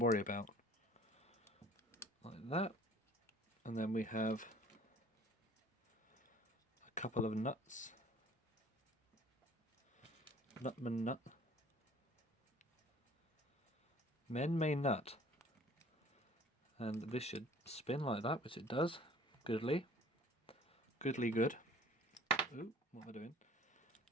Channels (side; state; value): both; normal; correlation 0.51